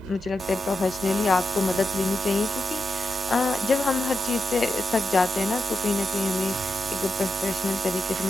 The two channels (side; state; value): both; normal; correlation 0.88